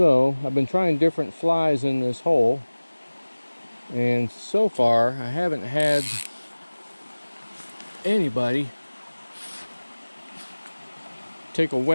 I've been trying different flies in this hole, and so far I haven't had anybody take a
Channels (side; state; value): both; inverted; correlation -1.00